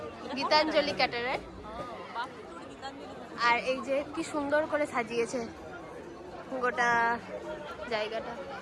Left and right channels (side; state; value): both; identical; correlation 1.00